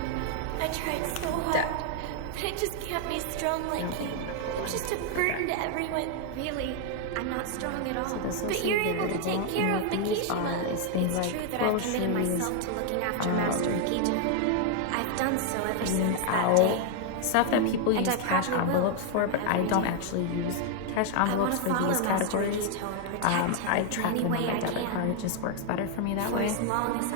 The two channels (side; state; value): both; different; correlation 0.00